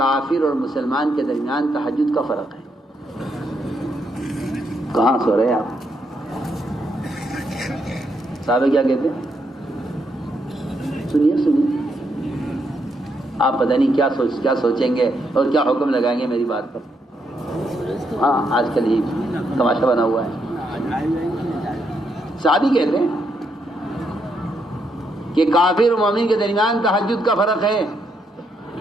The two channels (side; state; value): both; normal; correlation 0.78